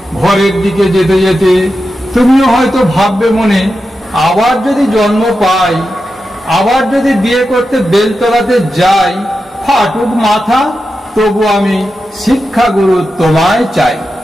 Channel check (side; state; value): both; normal; correlation 0.90